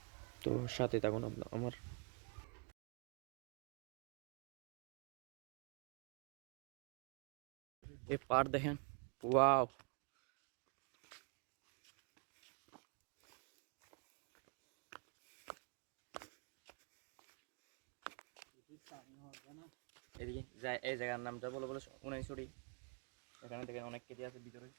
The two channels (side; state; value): left; quieter; 33.0 dB